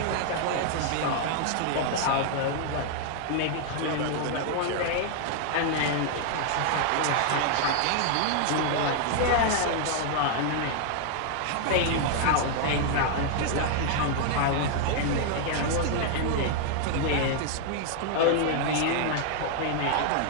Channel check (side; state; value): both; different; correlation 0.00